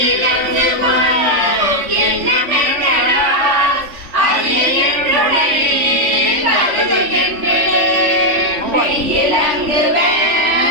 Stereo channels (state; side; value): late; left; 3.5 ms